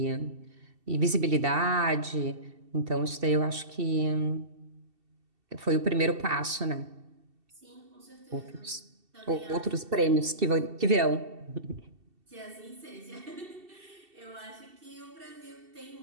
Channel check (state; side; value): late; left; 2.7 ms